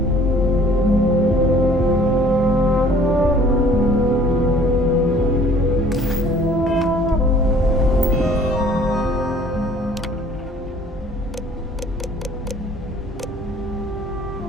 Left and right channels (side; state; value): both; normal; correlation 0.54